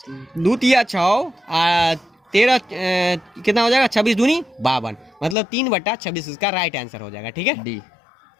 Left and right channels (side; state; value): right; drops out; at 5.4 s